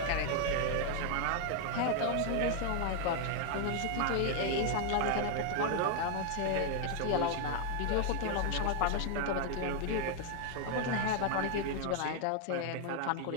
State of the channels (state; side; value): different; both; correlation 0.01